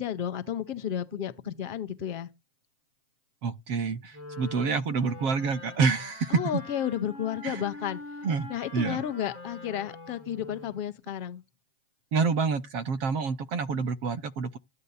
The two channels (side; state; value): left; late; 7.5 ms